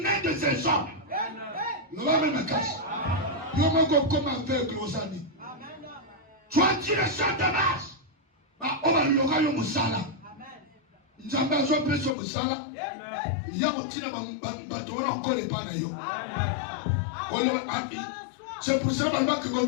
mains de ces hommes. Tu as direction de Damas. On va le musala. Nzambe azopesa musala. Ya kotina bato wana encore pas na yo. C'est pour ça que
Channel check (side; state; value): right; drops out; at 12.2 s